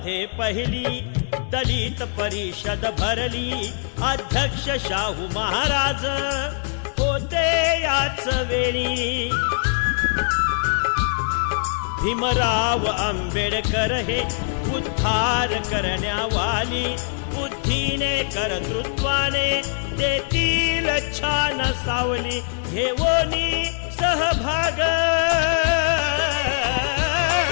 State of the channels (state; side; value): silent; right; digital silence